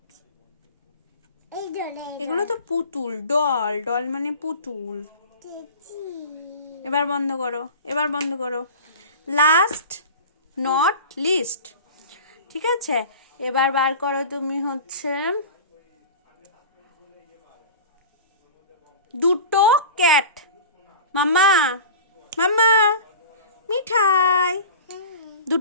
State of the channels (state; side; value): inverted; both; correlation -0.35